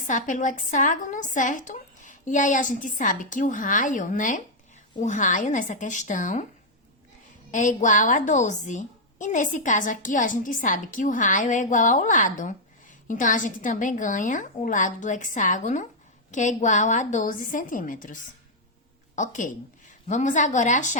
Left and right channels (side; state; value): both; normal; correlation -0.03